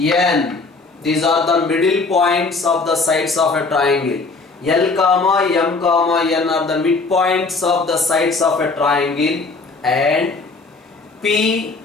These are the middle points of the sides of a triangle. L, comma, M, comma, N are the midpoints of the sides of a triangle. And P,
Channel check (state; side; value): quieter; right; 3.9 dB